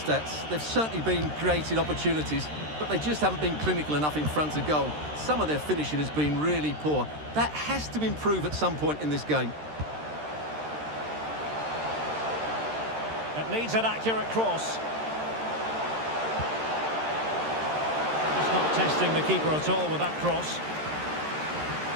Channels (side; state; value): left; late; 13 ms